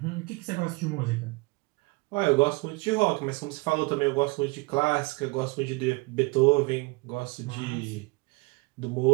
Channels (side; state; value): left; quieter; 26.0 dB